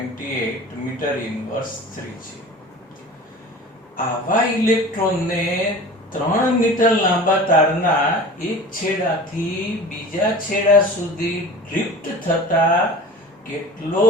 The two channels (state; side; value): normal; both; correlation 0.38